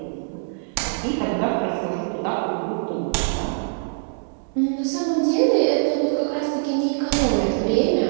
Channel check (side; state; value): left; silent; 63 dB below the other